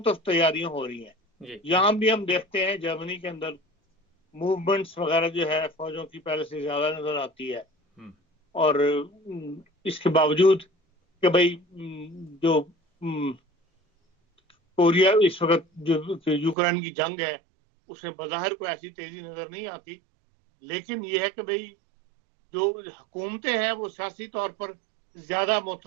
طرف تیاریاں ہو رہی ہیں. جی یہاں بھی ہم دیکھتے ہیں جرمنی کے اندر موومنٹس وغیرہ جو ہے فوجوں کی پہلے سے زیادہ نظر آتی ہے، اور اس کے باوجود کہ بھئی جو کوریا اس وقت جو یوکرین کی جنگ ہے اس میں بظاہر کوئی ایسی تیزی نظر نہیں آتی، لیکن یہ ہے کہ بھئی جو حکومتیں ہیں وہ سیاسی طور پر زیادہ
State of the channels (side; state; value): left; drops out; at 16.6 s